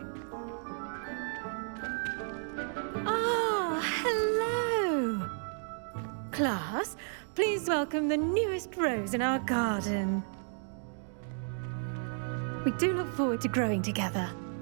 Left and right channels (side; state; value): left; silent; 56 dB below the other